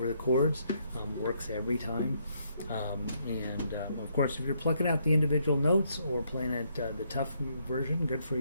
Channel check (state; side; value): inverted; both; correlation -0.73